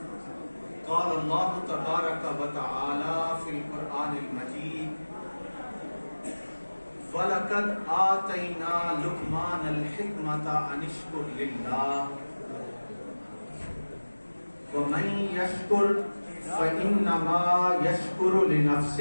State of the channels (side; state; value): both; inverted; correlation -1.00